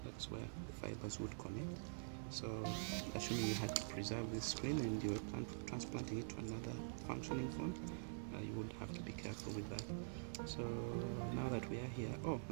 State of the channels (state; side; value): silent; left; digital silence